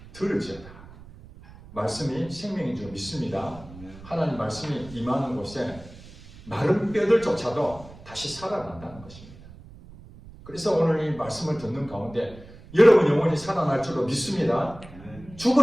들을지어다. 말씀이 생명인 줄 믿습니다. 하나님 말씀이 임하는 곳에 마른 뼈들조차도 다시 살아난다는 것입니다. 그래서 오늘 이 말씀을 듣는 가운데 여러분 영혼이 살아날 줄로 믿습니다.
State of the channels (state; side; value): noise; right; rumble, 19 dB below the sound